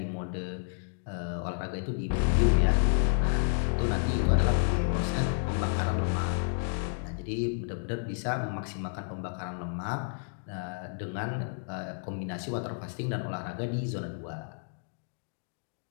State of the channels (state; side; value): silent; right; digital silence